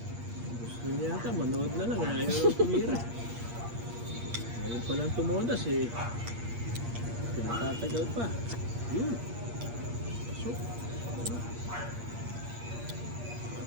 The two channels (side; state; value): left; late; 8.5 ms